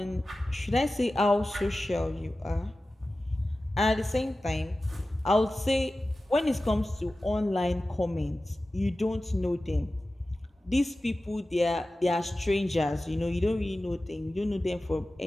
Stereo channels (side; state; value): both; normal; correlation 0.95